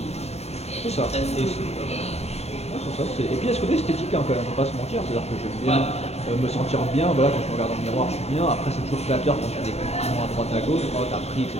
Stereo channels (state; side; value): late; right; 0.31 ms